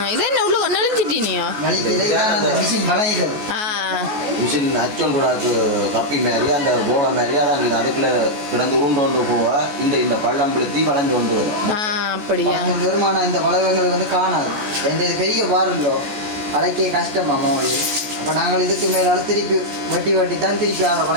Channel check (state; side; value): late; left; 14 ms